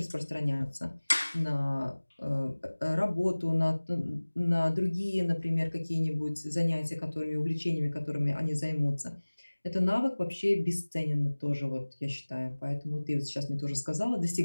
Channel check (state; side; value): inverted; both; correlation -1.00